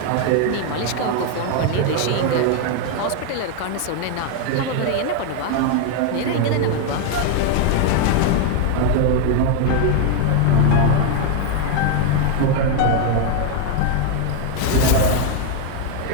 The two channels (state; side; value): different; both; correlation 0.00